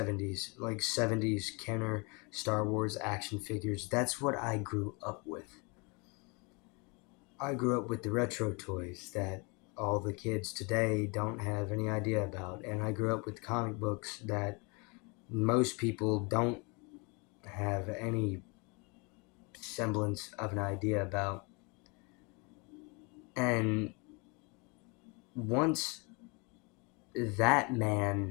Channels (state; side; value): quieter; right; 30.4 dB